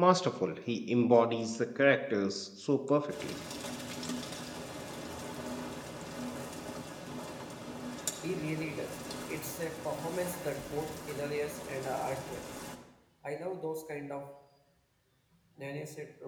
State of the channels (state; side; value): identical; both; correlation 1.00